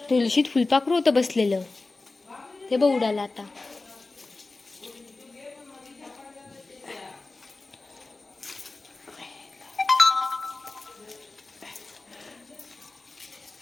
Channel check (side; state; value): right; quieter; 3.4 dB